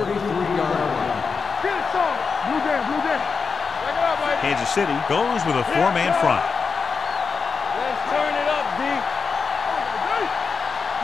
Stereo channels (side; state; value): right; quieter; 5.3 dB